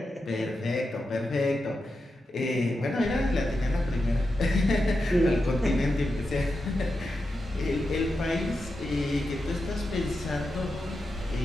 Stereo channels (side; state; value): both; normal; correlation 0.89